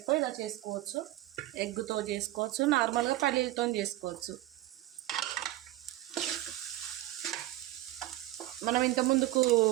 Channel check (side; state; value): left; quieter; 15.9 dB